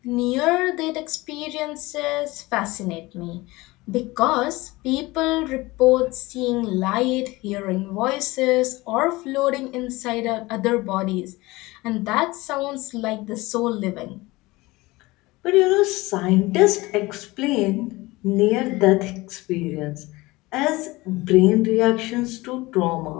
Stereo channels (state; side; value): quieter; right; 21.1 dB